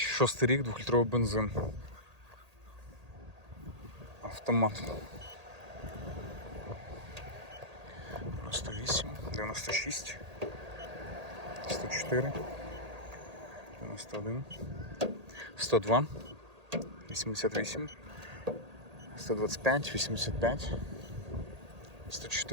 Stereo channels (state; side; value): late; left; 1.8 ms